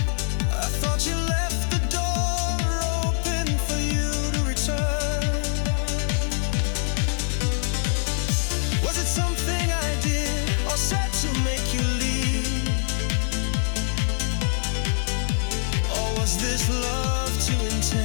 I thought you left the door open for you to return. Was it something I did or said to make you leave? Or was this love too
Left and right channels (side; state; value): right; silent; 57 dB below the other